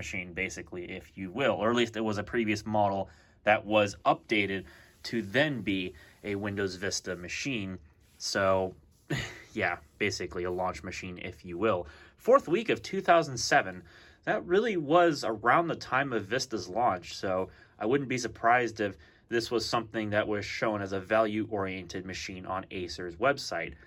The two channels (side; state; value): both; identical; correlation 1.00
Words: basically, if you will, or at least it was a previous model that was updated to then be a Windows Vista machine. So, yeah, basically a launch machine, if you will. 4th week of 2007, that really was around the time of Vista's launch, so I wouldn't be surprised if this was something that was shown as a value-oriented machine on Acer's website.